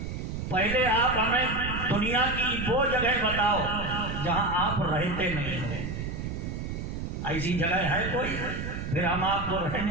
पहले आप हमें दुनिया की वो जगह बताओ जहां आप रहते नहीं हो। ऐसी जगह है कोई? फिर हम आपको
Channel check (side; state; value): right; noise; rumble, 5 dB below the sound